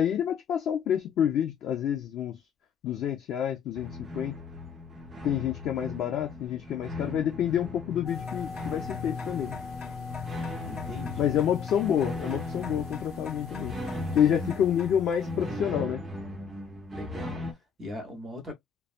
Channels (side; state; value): right; quieter; 7.8 dB